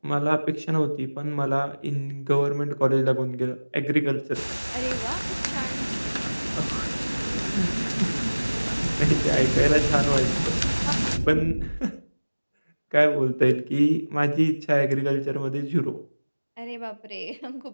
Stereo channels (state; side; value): inverted; both; correlation -1.00